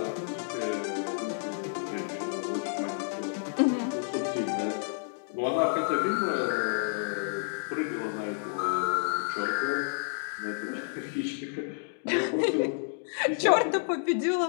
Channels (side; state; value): right; silent; digital silence